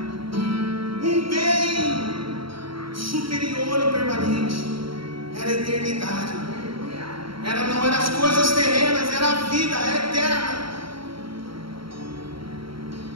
Um bem superior e permanente era a eternidade. Não eram as coisas terrenas, era a vida eterna.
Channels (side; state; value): left; late; 0.74 ms